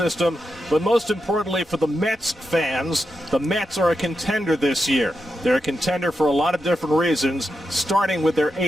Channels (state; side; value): normal; both; correlation 0.87